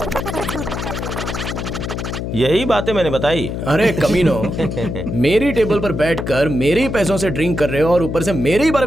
यही बातें मैंने बताई। अरे कमीनो, मेरी टेबल पर बैठकर मेरे ही पैसों से ड्रिंक कर रहे हो और ऊपर से मेरे ही बारे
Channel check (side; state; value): left; noise; hum, 4 dB below the sound